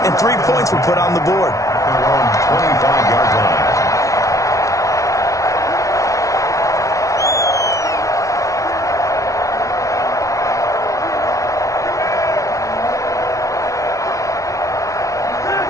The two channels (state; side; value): late; right; 0.16 ms